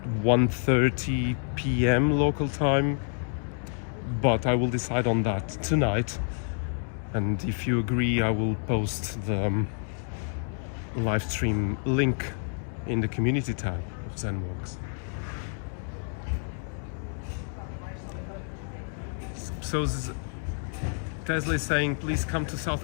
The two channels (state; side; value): silent; right; 57 dB below the other